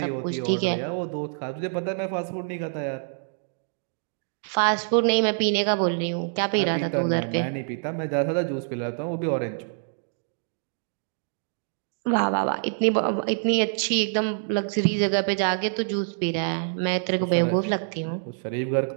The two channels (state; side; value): silent; left; digital silence